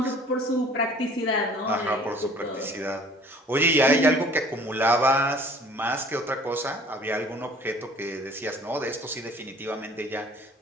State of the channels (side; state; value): both; normal; correlation 0.51